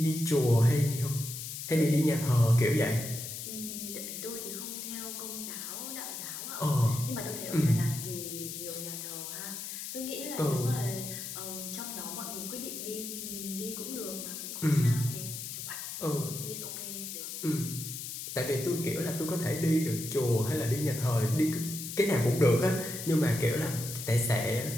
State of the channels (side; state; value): left; noise; hiss, 7 dB below the sound